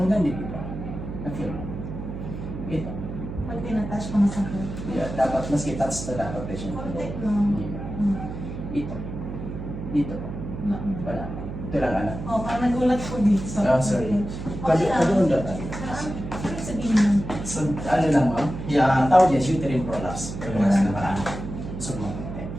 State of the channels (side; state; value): right; noise; hum, 8 dB below the sound